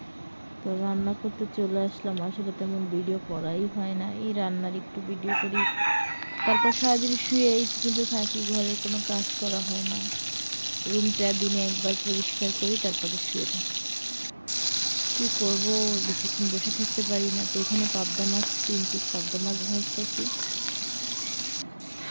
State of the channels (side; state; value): both; inverted; correlation -1.00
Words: তো রান্না করতে চলে আসলাম। আসলে তেমন ভিডিও করাই হয় না, এই রান্নার একটু ভিডিও করি। তারপর সারাদিন শুয়েই কিন্তু থাকি, ঘরের কোনো কাজ করা হয় না। রুমটা দিনে একবার পরিষ্কার করি, তারপরে শুয়ে থাকি। কী করবো, বেশিক্ষণ বসে থাকতে পারি না। তো এখানে পাবদা মাছ, 3 পিস পাবদা মাছ ভাজতেছি,